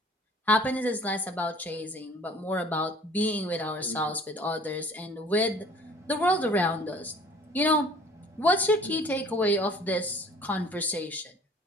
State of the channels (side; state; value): both; normal; correlation 0.51